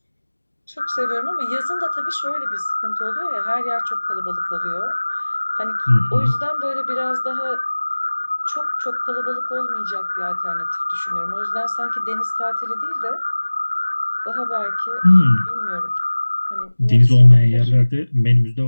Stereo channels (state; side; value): inverted; both; correlation -1.00